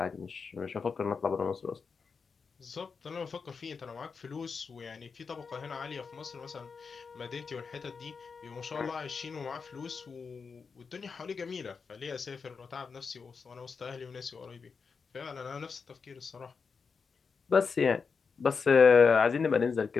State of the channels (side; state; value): right; quieter; 5.3 dB